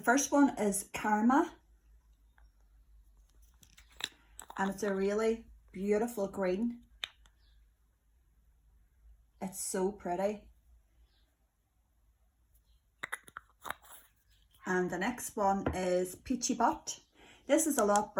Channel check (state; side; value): identical; both; correlation 1.00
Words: one is Karma and it's a really beautiful green. It's so pretty. And the next one is Peachy Butt. This is a lot